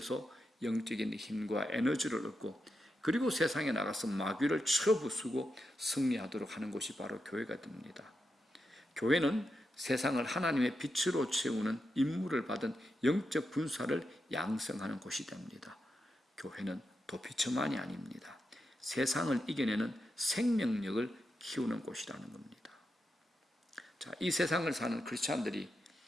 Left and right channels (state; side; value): normal; both; correlation 0.86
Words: 영적인 힘과 에너지를 얻고 그리고 세상에 나가서 마귀를 쳐부수고 승리하도록 하는 곳이 바로 교회가 됩니다. 교회는 세상을 하나님의 빛으로 채우는 임무를 받은 영적 군사를 양성하는 곳이 됩니다. 교회는 도피처만이 아닙니다. 세상을 이겨내는 생명력을 키우는 곳이라는 겁니다. 자, 이 세상을 사는 크리스찬들이